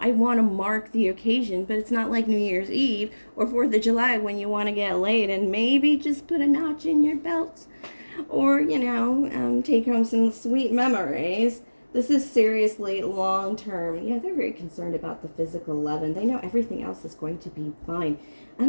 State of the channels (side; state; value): both; inverted; correlation -1.00